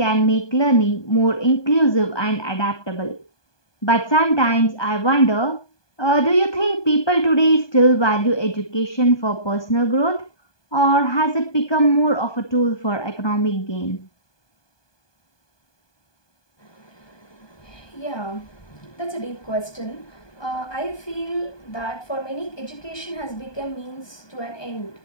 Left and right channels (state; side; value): late; right; 1.2 ms